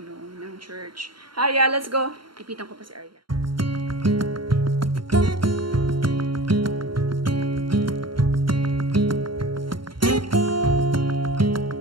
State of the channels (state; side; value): late; left; 0.73 ms